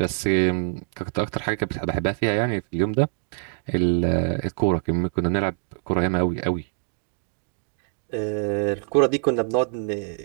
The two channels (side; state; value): left; silent; digital silence